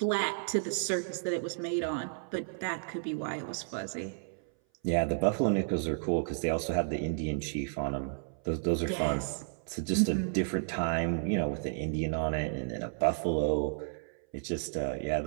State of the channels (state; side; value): silent; left; 56 dB below the other